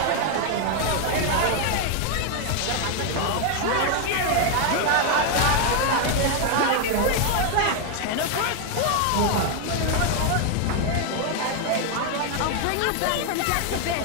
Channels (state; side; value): different; both; correlation 0.00